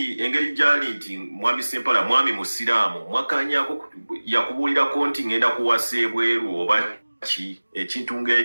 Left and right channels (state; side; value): inverted; both; correlation -1.00